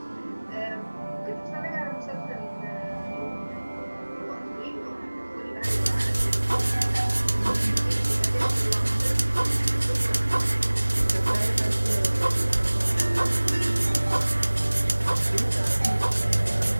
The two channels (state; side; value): inverted; both; correlation -1.00